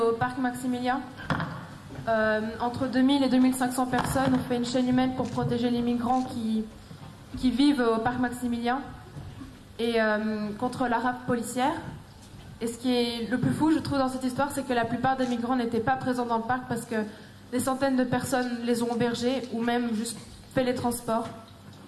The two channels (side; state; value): both; identical; correlation 1.00